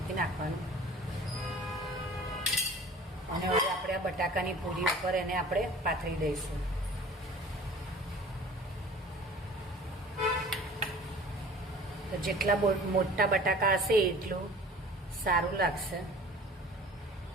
નાખવાનું. અને હવે આપણે આ બટાકાની પૂરી ઉપર એને આપણે પાથરી દઈશું. તો જેટલા મોટા બટાકા હશે એટલું સારું લાગશે.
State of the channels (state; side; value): normal; both; correlation 0.45